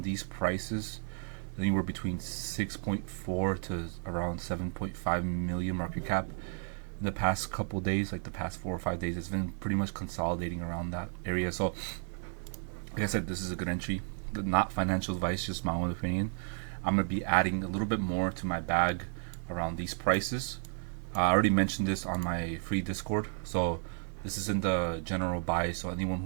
these prices, anywhere between 6.4 to around 7.5 million market cap. In the past couple days, like the past 4 or 5 days, it's been pretty much consolidating around that area. So like I said, this is a good entry. Not financial advice, just my own opinion. I'm gonna be adding a little bit more to my bag around these prices. I already mentioned this on my free Discord, so this is in the general buy. So anyone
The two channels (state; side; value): silent; left; 56 dB below the other